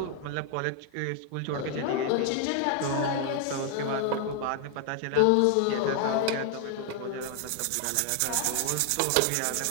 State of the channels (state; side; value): different; both; correlation 0.00